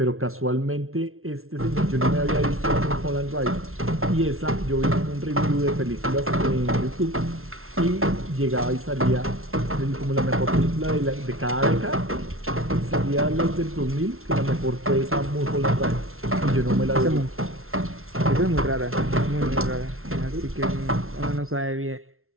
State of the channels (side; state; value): left; late; 0.62 ms